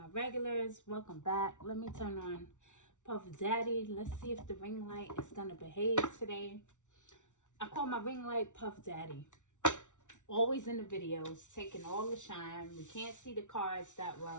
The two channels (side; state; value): right; late; 0.86 ms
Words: regulars, welcome back. Let me turn on Puff Daddy. Let's see if the ring light is going to behave today. I call my ring light Puff Daddy. Always in the videos, taking all the shine. We can't see the cards that